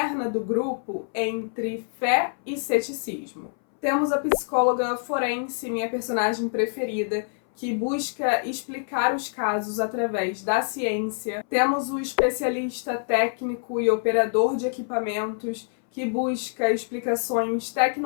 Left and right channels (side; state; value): right; silent; 61 dB below the other